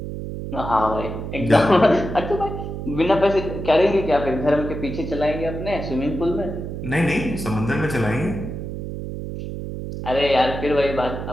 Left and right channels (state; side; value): noise; right; hum, 7 dB below the sound